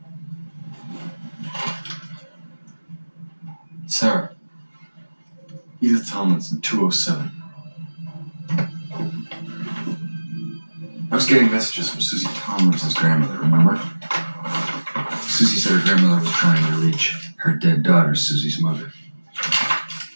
Sarah. Edith Tomlinson, 207. I was getting messages from Susie Tomlinson's grandmother, remember? Susie said her grandmother was trying to reach her dead daughter, Susie's mother.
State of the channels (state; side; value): inverted; both; correlation -1.00